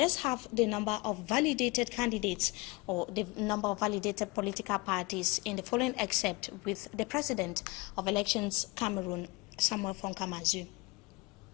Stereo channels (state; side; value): quieter; right; 24.9 dB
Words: have the number of validated candidates or the number of validated political parties in the following excerpt with the President of Elections Cameroon, Samuel Fonkamazu.